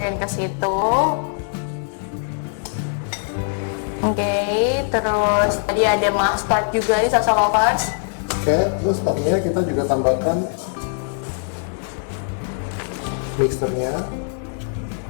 ke situ. Oke, terus tadi ada mustard juga nih salsa lovers. Oke, terus tadinya kita juga tambahkan mixernya.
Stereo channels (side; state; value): right; silent; digital silence